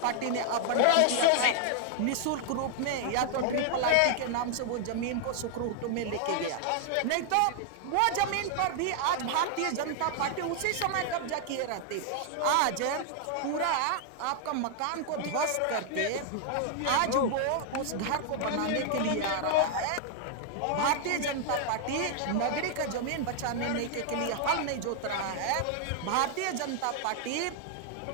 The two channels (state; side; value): different; both; correlation 0.00